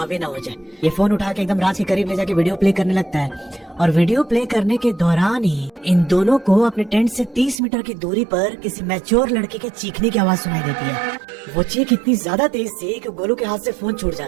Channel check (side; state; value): left; drops out; at 7.6 s